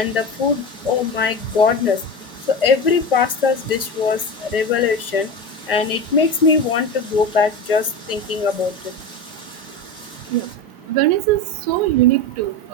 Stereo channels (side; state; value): both; normal; correlation 0.24